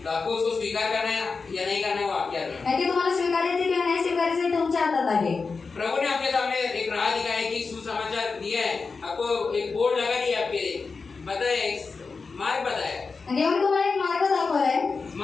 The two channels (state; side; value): quieter; right; 4.6 dB